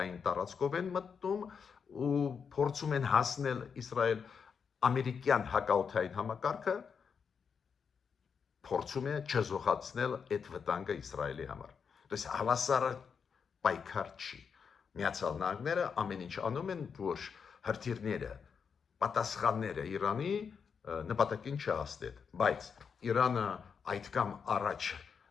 տարածքով են մտնում ու փորձում են հասնել Իսրայել, ամերիկյան հակաօդային համակարգը փորձում է չզոհացնել այդ վտանգը Իսրայելի համար։ Դες հավասարը պայքար չի։ Միացյալ Նահանգները ամեն ինչ անում են, որ հրթիռները, պատասխանները Իրանի նպատակին չհասնեն, բայց Իրանը այդքան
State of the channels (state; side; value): quieter; right; 6.3 dB